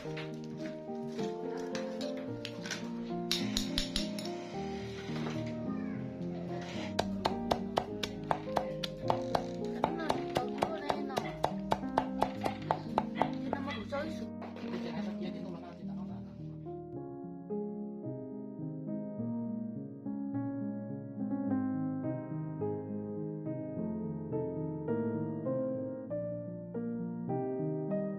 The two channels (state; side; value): identical; both; correlation 1.00